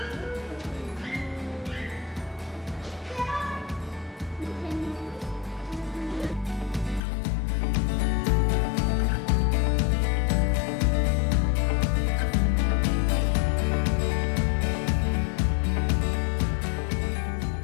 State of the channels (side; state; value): right; drops out; at 7.0 s